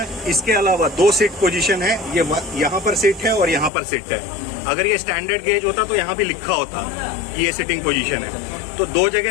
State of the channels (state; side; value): drops out; right; at 3.7 s